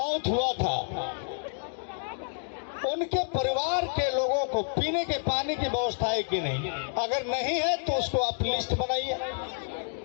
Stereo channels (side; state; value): right; silent; digital silence